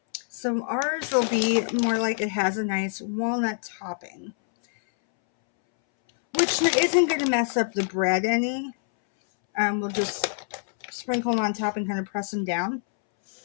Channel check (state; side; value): silent; right; 61 dB below the other